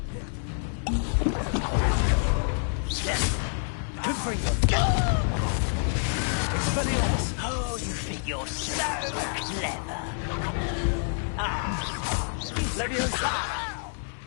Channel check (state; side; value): silent; right; digital silence